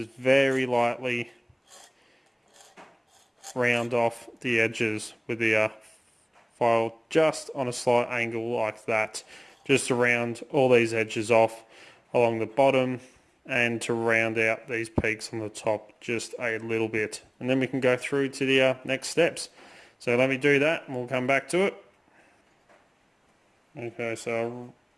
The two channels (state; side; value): identical; both; correlation 1.00